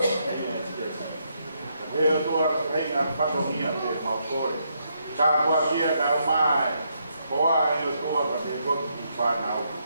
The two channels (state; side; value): inverted; both; correlation -0.77